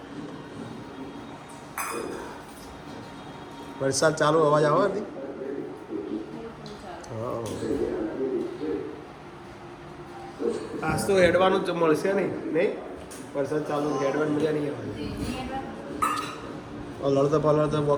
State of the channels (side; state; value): both; identical; correlation 1.00